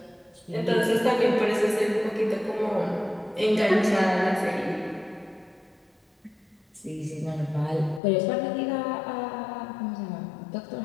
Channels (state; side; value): drops out; right; at 8.0 s